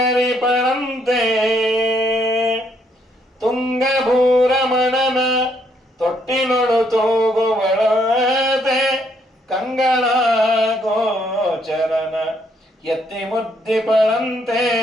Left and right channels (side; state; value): both; normal; correlation 0.71